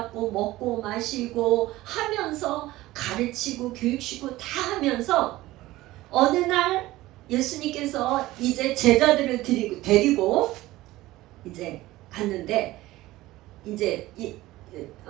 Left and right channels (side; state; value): left; quieter; 17.4 dB